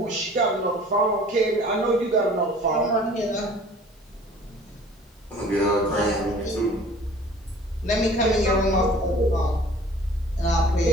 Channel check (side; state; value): both; normal; correlation 0.49